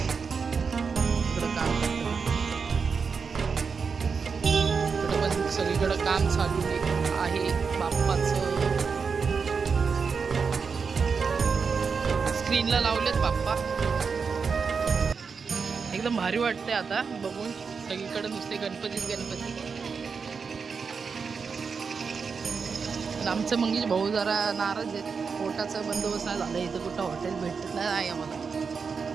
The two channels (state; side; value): quieter; left; 5.5 dB